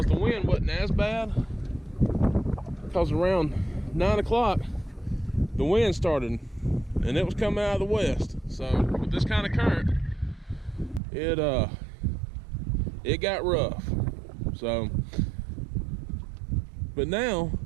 the wind wasn't as bad. Because around 9 o'clock, the wind started and it was coming out of the west. So with this kind of current, it got rough. So, but now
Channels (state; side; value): drops out; left; at 11.0 s